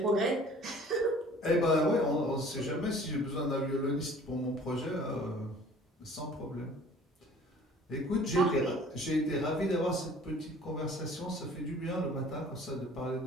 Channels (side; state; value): both; normal; correlation 0.50